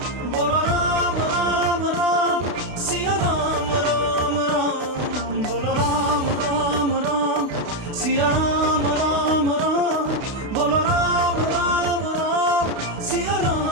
बोलो राम राम राम, सिया राम राम राम। बोलो राम राम राम, सिया राम राम राम। बोलो राम राम राम, सिया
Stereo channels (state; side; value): late; left; 32 ms